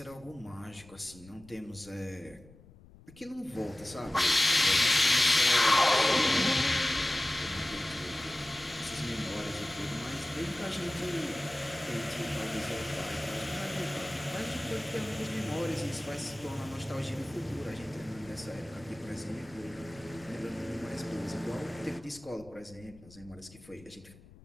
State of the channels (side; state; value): left; noise; rumble, 22 dB below the sound